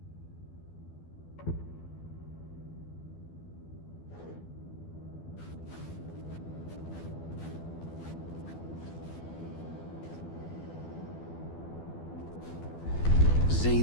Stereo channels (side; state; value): right; late; 12 ms